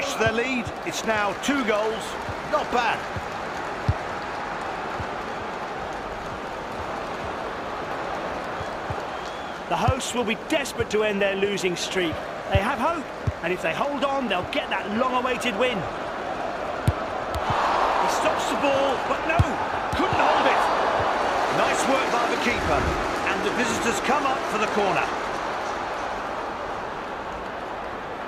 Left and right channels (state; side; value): identical; both; correlation 1.00